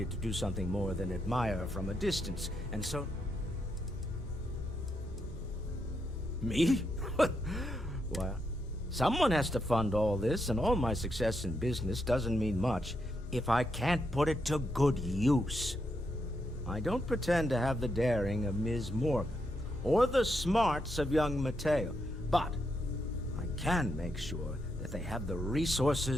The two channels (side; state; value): both; normal; correlation 0.81